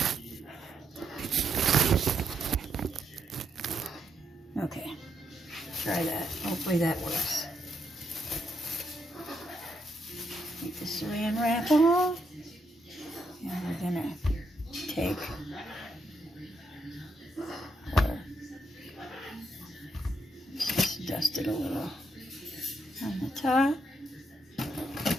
Okay. Try that. Hopefully that works. Take the saran wrap off. And we're going to take just dust it a little on the top.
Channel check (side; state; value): both; normal; correlation 0.78